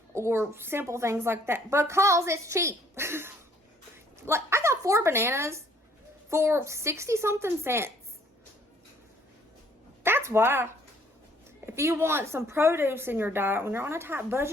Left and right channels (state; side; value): normal; both; correlation 0.61